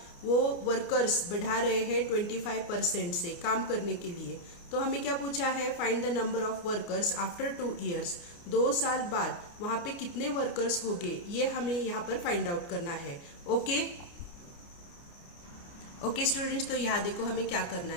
वो वर्कर्स बढ़ा रहे हैं 25% से काम करने के लिए। तो हमें क्या पूछा है, find the number of workers after 2 years. 2 साल बाद वहां पे कितने वर्कर्स होंगे, ये हमें यहाँ पर फाइंड आउट करना है। ओके स्टूडेंट्स, तो यहाँ देखो हमें क्या करना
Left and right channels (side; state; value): right; late; 29 ms